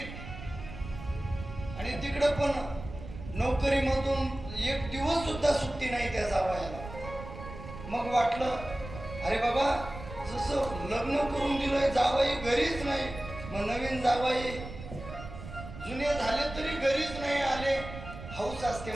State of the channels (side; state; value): right; noise; rumble, 11 dB below the sound